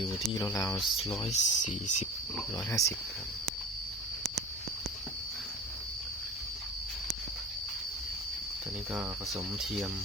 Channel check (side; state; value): both; normal; correlation 0.37